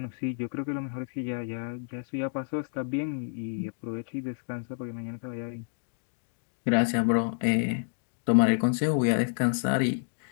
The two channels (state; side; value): silent; right; digital silence